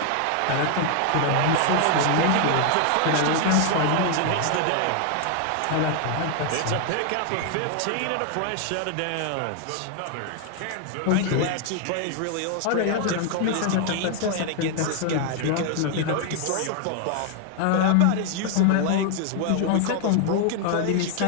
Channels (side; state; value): both; different; correlation 0.00